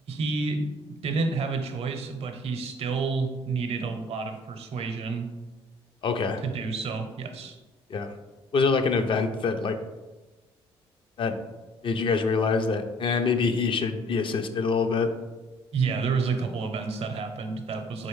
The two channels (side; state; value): both; normal; correlation 0.54